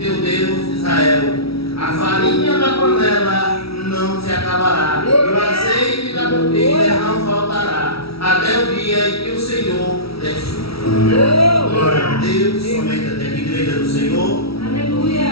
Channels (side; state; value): right; late; 0.76 ms